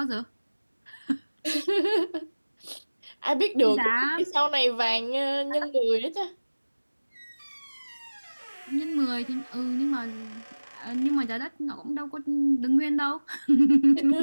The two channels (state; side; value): inverted; both; correlation -1.00